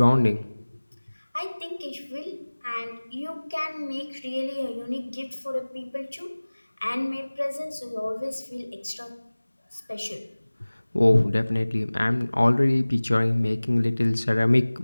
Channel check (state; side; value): inverted; both; correlation -1.00